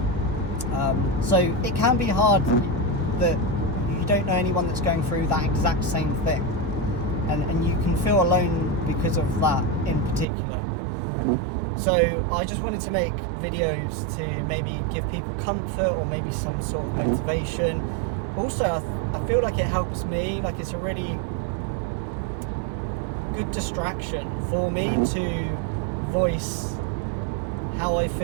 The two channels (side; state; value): left; drops out; at 10.2 s